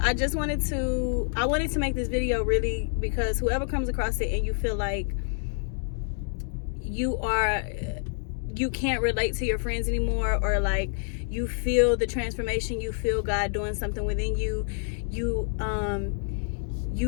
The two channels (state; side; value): silent; right; 60 dB below the other